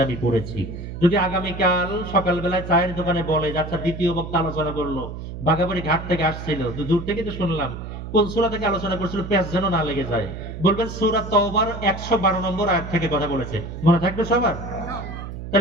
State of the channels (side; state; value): right; noise; hum, 9 dB below the sound